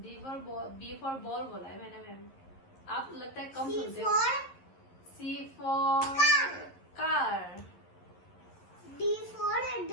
फॉर बॉल बोला है मैंने मैम। आप लगता है कम सी सुनते हो। For C for car. D for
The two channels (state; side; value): late; right; 11 ms